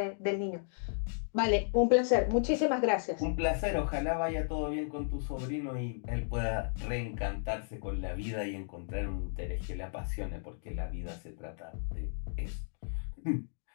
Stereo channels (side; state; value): right; silent; digital silence